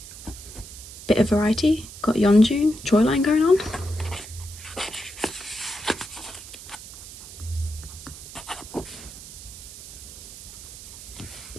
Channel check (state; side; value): noise; right; hiss, 14 dB below the sound